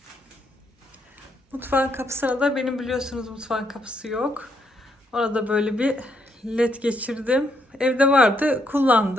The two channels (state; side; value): normal; both; correlation 0.75